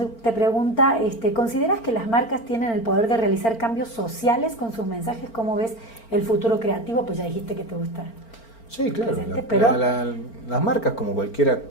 pregunta, ¿consideras que las marcas tienen el poder de realizar cambios sociales con sus mensajes? ¿Cómo ves el futuro creativo? Pues ya dijiste que te gusta. Sí, claro. Pero las marcas, como cualquier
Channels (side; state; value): right; late; 4.4 ms